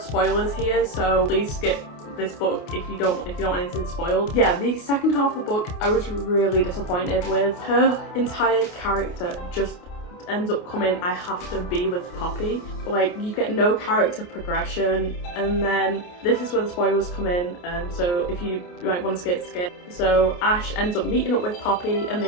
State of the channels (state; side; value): late; right; 28 ms